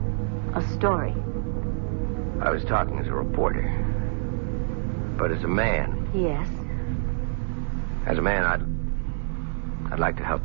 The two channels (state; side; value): silent; left; 61 dB below the other